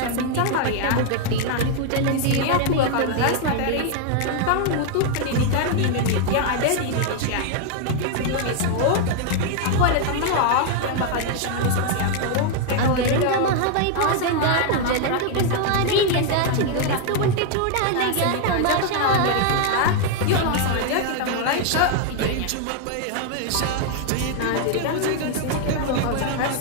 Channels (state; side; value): different; both; correlation 0.00